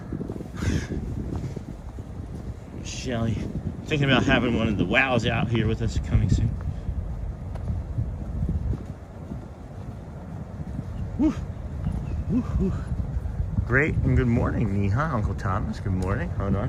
Shelly. Thinking about having one of the wows out here with us coming soon. Woo. Woo, woo. Great and good morning, Neha, Uncle Thomas. Good morning. Hold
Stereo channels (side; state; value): both; identical; correlation 1.00